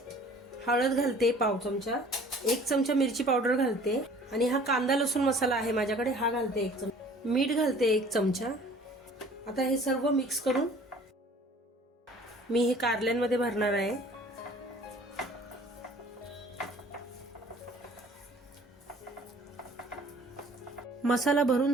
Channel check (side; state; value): both; normal; correlation 0.51